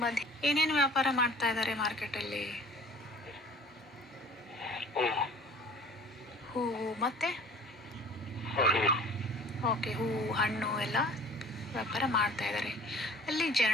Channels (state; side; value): normal; both; correlation 0.47